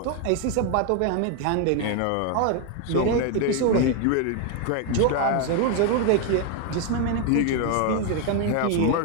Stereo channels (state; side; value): different; both; correlation 0.01